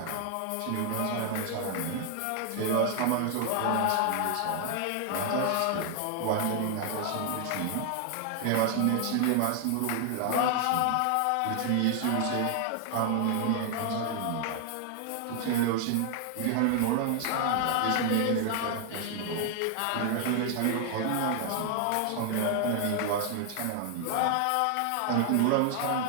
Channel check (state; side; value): different; both; correlation 0.00